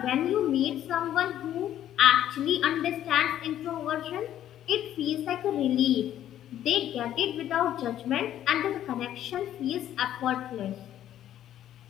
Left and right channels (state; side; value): quieter; right; 11.6 dB